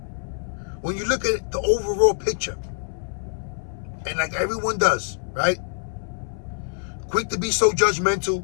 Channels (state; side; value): silent; right; 62 dB below the other